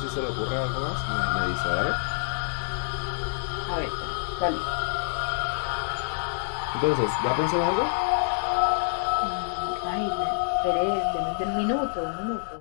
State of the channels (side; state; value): right; silent; 60 dB below the other